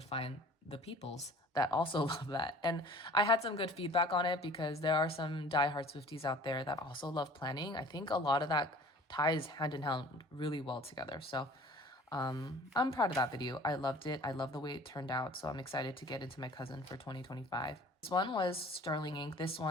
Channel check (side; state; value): both; normal; correlation 0.47